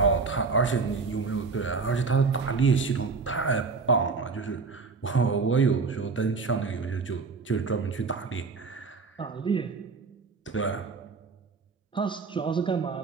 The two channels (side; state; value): left; quieter; 4.6 dB